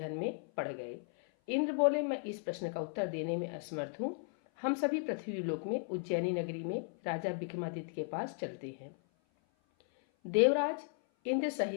में पड़ गए। इंद्र बोले, मैं इस प्रश्न का उत्तर देने में असमर्थ हूँ। हम सभी पृथ्वी लोक में उज्जैनी नगरी में राजा विक्रमादित्य के पास चलते हैं। देवराज इंद्र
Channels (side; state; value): right; silent; 54 dB below the other